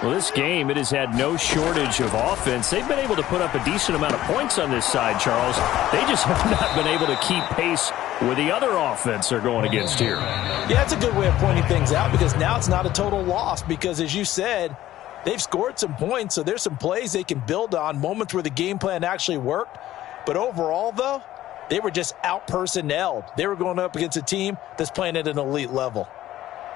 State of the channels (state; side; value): quieter; right; 14.0 dB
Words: Well, this game, it has had no shortage of offense. They've been able to put up a decent amount of points on this side, Charles. They just have not been able to keep pace with the other offense they're going against here. Yeah, that's a good way of pointing things out because now it's not a total loss because, as you said, they've scored some points, so there's some plays they can build on, moments where the game plan actually worked. But overall, though, they were just out-personnelled. They were going up against a team that's playing at an elite level.